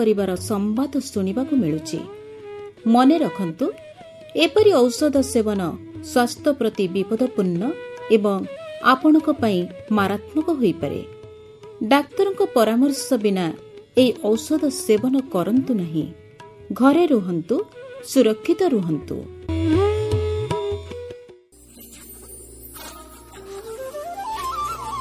संवाद सुनिबाकु मिलुछि। मने रखंतु एपरि औषध सेवन स्वास्थ्य प्रति विपदपूर्ण एवं आपणक पई मारात्मक होई पारे। डाक्तरक परामर्श बिना ए औषध सेवन करंतु नहीं। घरे रुहंतु, सुरक्षित रुहंतु। निजकु कोरोना प्रभावरु केते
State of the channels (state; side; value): identical; both; correlation 1.00